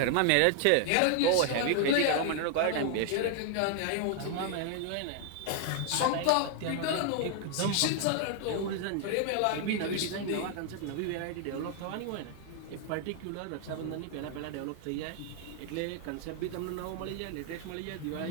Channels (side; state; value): both; different; correlation 0.00